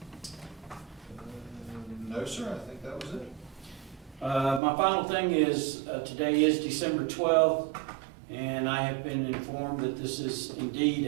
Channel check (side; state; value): left; drops out; at 4.6 s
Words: No, sir. I think that was it. My final thing is, today is December 12th, and I have been informed that this is indeed